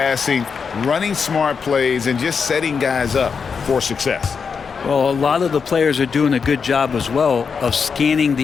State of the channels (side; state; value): right; quieter; 5.8 dB